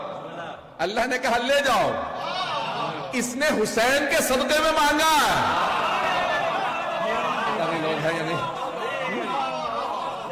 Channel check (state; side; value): identical; both; correlation 1.00